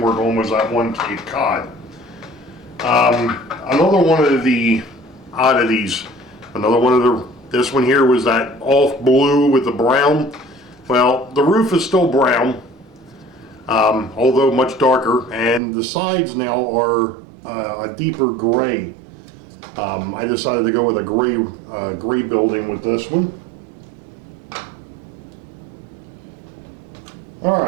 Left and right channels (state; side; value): drops out; left; at 15.6 s